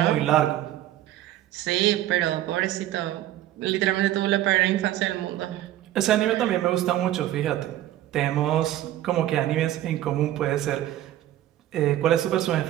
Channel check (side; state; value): left; quieter; 13.5 dB